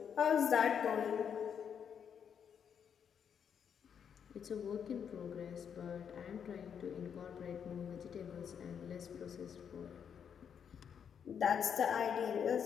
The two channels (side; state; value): right; quieter; 7.7 dB